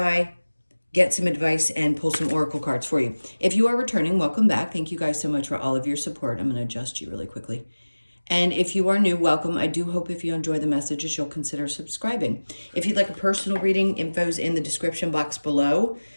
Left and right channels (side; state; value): both; inverted; correlation -1.00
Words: get some advice, and pull some oracle cards for you. If you are returning, welcome back. Thank you guys so much for all of your support. I'm going to adjust you really quickly. And if you are new, welcome. I do hope if you enjoy the messages, you'll consider subscribing. If you'd like a personal reading, info's in the description box below.